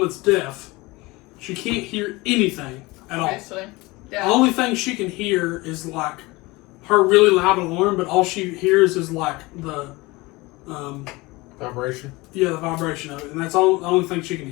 deaf. She can't hear anything at all. Obviously. The Yeah. only thing she can hear is like her really loud alarm, but all she hears is like the, Vibration. the vibration of it. And that's all the only thing she can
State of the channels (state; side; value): quieter; right; 22.6 dB